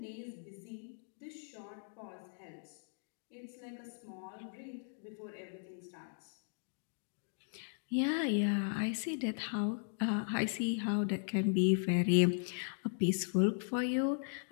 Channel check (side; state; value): right; silent; digital silence